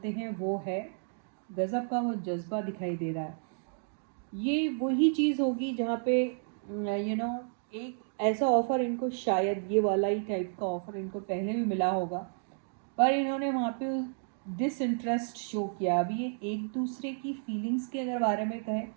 हैं वो है, गज़ब का वो जज्बा दिखाई दे रहा है। ये वही चीज़ होगी जहाँ पे एक ऐसा ऑफ़र इनको, शायद ये वाला ही टाइप का ऑफ़र इनको पहले भी मिला होगा, पर इन्होंने वहाँ पे डिसइंटरेस्ट शो किया। अभी ये एक दूसरे की फीलिंग्स के अगर बारे में कहें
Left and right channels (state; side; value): silent; left; digital silence